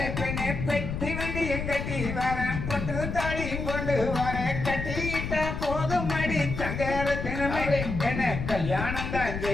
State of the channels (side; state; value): left; noise; rumble, 4 dB below the sound